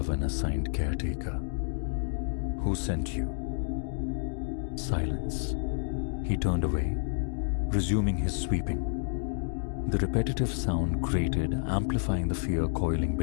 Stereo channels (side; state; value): right; silent; digital silence